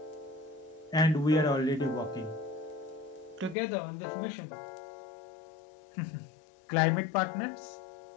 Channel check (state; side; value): drops out; right; at 3.6 s